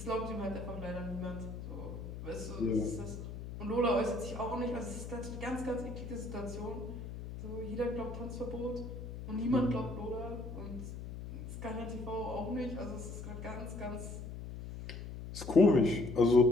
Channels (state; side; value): noise; left; hum, 9 dB below the sound